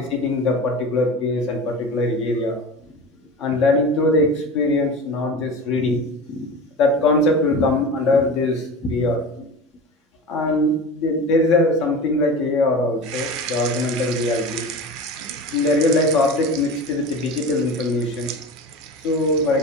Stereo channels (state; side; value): normal; both; correlation 0.32